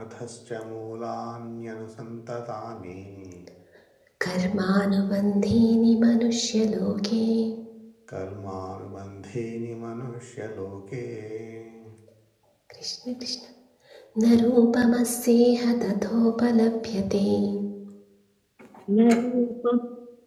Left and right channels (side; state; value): both; identical; correlation 1.00